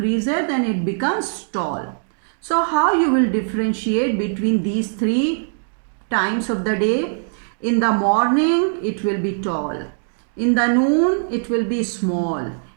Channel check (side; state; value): left; silent; digital silence